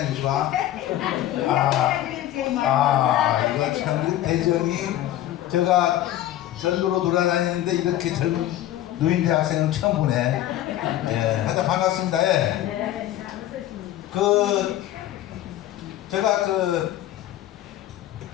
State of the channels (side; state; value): right; quieter; 13.2 dB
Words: 와. 이거 참 대전이 제가 전도로 돌아다니는데 이렇게 젊은 노인대학생은 처음 보네. 예, 하여튼 반갑습니다. 예. 네, 제가